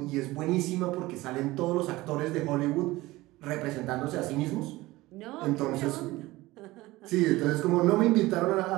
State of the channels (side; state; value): left; quieter; 19.1 dB